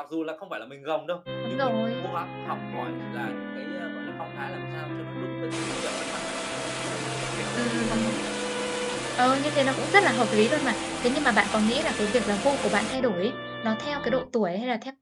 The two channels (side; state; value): both; identical; correlation 1.00